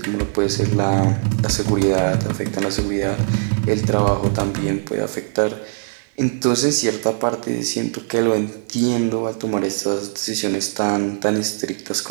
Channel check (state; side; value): silent; left; 65 dB below the other